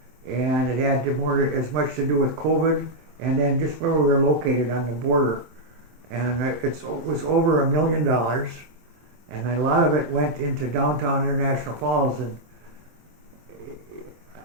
and it had as much to do with COVID and then just where we were located on the border. And it was over $1 million, and a lot of it went into downtown International Falls, and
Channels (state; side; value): late; left; 23 ms